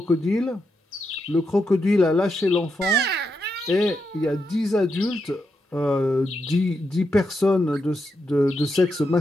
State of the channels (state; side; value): normal; both; correlation 0.84